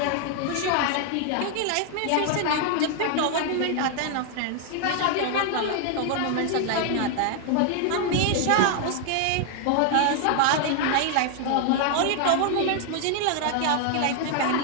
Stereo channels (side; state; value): both; different; correlation 0.00